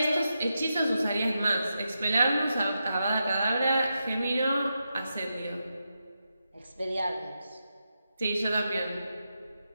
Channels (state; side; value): inverted; both; correlation -0.87